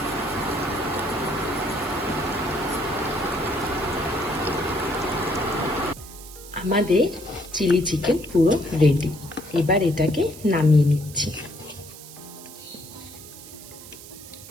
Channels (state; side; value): noise; right; hiss, 16 dB below the sound